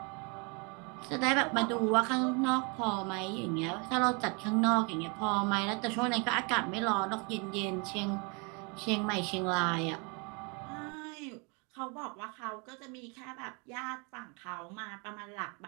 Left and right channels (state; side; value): quieter; left; 32.5 dB